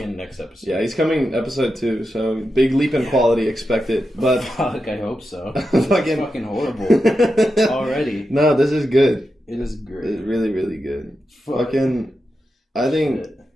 next episode. Yeah, he's coming episode 2, so big leap in quality expected. But fuck, I hope so. It's fucking horrible already. No, this is good. It is great. It's really, really good. Fuck. Fucking I think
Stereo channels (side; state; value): both; normal; correlation 0.88